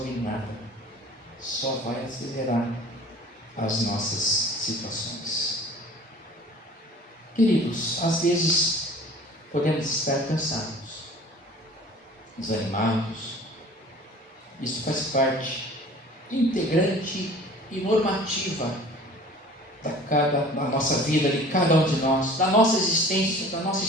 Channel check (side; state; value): both; normal; correlation 0.45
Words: nada, só vai acelerar as nossas situações. Queridos, às vezes podemos estar cansados, desanimados. Isso faz parte integrante e normativa da nossa vida, de cada um de nós, da nossa existência, da nossa